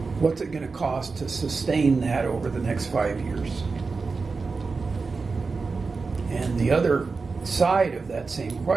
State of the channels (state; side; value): quieter; left; 4.4 dB